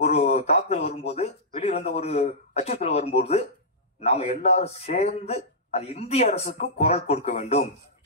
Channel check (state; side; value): normal; both; correlation -0.14